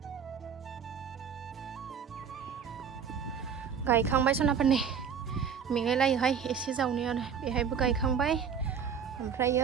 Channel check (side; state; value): left; quieter; 7.1 dB